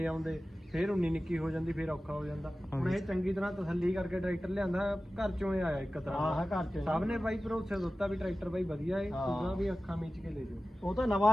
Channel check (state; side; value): normal; both; correlation 0.95